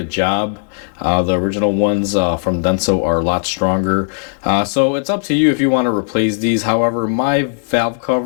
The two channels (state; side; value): silent; right; digital silence